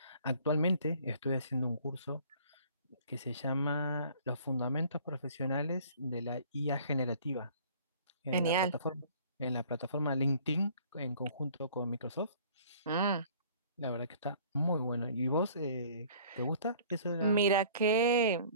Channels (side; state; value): both; inverted; correlation -0.52